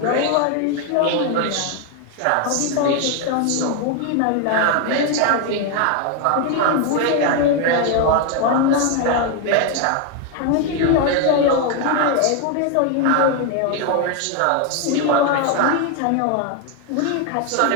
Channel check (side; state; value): both; different; correlation 0.01